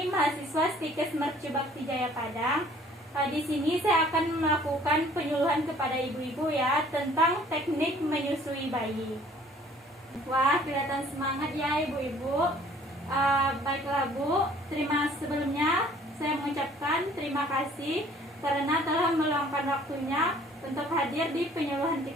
mahasiswa Stikes Mercu Bakti Jaya Padang. Di sini saya akan melakukan penyuluhan kepada ibu-ibu ya tentang teknik menyusui bayi. Wah, kelihatan semangat ya ibu-ibu. Baiklah Bu, sebelumnya saya mengucapkan terima kasih karena telah meluangkan waktunya untuk hadir di penyuluhan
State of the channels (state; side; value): normal; both; correlation 0.55